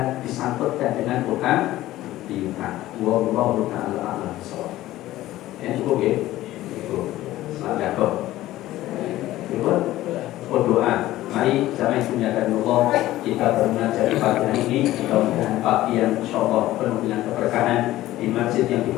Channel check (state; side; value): quieter; right; 15.5 dB